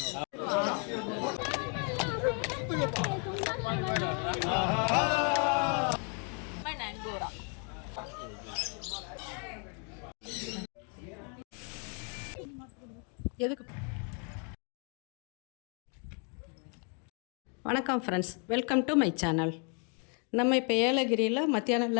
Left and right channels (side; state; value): right; quieter; 39.2 dB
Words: friends, welcome to my channel. நம்ம இப்போ ஏலகிரியில் மத்தியானம்